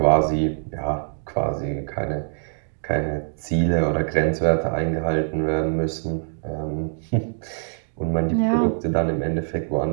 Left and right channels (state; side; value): silent; left; digital silence